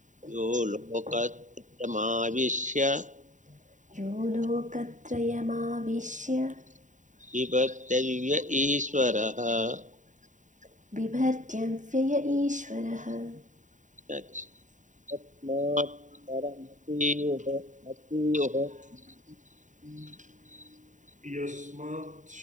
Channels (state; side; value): late; left; 0.36 ms